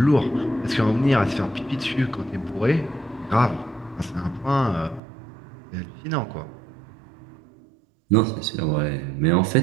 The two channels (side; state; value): left; drops out; at 5.0 s